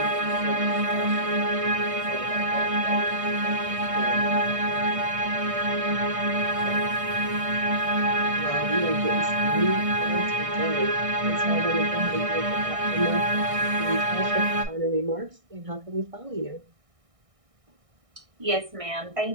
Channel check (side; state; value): left; late; 1.6 ms